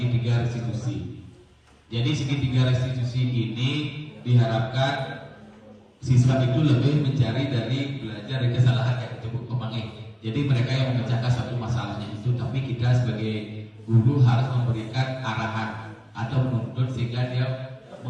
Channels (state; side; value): identical; both; correlation 1.00